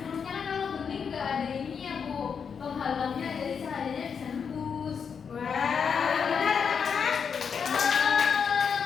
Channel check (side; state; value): right; quieter; 6.6 dB